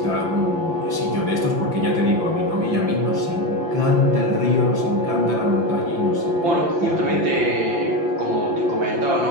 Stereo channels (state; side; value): late; left; 5.8 ms